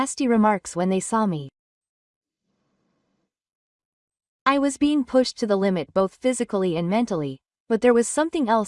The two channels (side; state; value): both; identical; correlation 1.00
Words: remarks when they saw me. I was being pushed to the limit both physically and mentally, but there was something